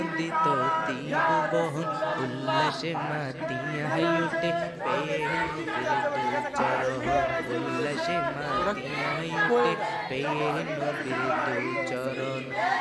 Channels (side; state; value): both; identical; correlation 1.00